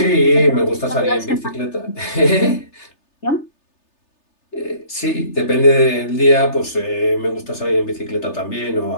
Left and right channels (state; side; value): late; right; 3.3 ms